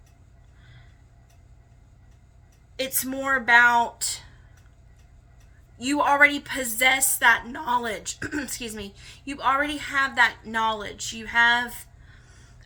it's more about, you already possess that knowledge. Excuse me. You already have that knowledge. You have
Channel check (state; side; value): identical; both; correlation 1.00